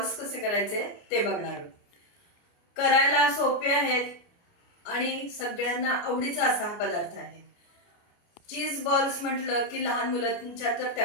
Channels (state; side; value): late; right; 29 ms